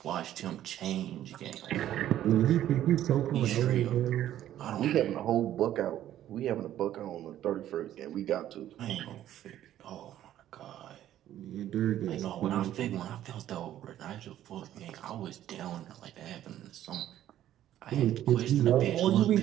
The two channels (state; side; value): quieter; left; 12.2 dB